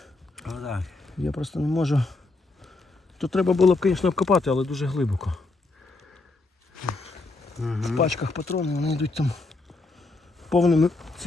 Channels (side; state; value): right; quieter; 3.3 dB